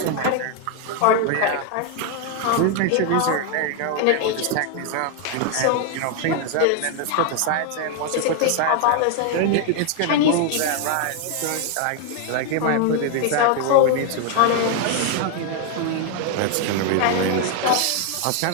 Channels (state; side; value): different; both; correlation 0.01